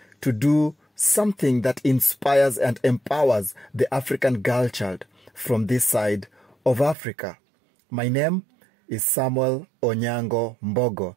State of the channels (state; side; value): drops out; left; at 7.0 s